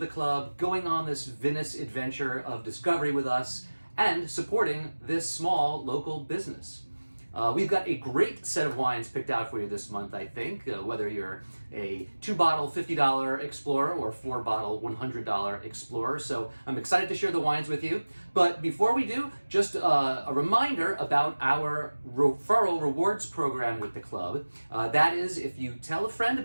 club, going on this vinous adventure of discovery with us, and supporting this small local business. We've got a great set of wines picked out for you this month, I think, whether you're a 2-bottle $50 Explorer or 4-bottle $100 Explorer. So I'm excited to share the wines with you. But before we do, just a reminder about our referral rewards program with the club. That is, if you tell a friend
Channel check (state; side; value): inverted; both; correlation -1.00